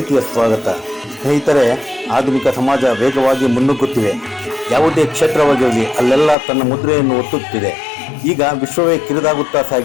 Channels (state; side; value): drops out; right; at 6.4 s